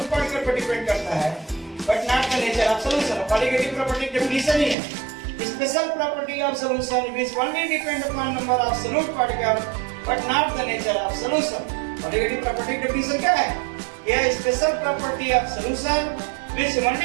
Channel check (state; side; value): drops out; left; at 4.8 s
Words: particle पर डिपेंड करता है, but not the nature of solution. Colligative property definition ही है. Special property of solution which only depend upon number of solute particle but not the nature of solution. Colligative property definition क्या है? यह special property of solution which